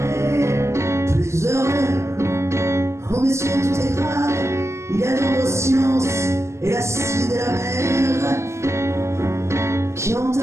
plus heureux. Oh messieurs, tout est grave, il y a dans vos sciences et l'acide et la mer qui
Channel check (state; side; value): late; left; 0.13 ms